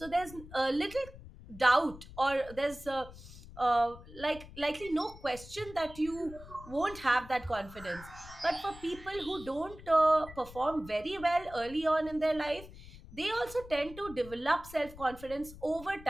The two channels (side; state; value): left; noise; rumble, 17 dB below the sound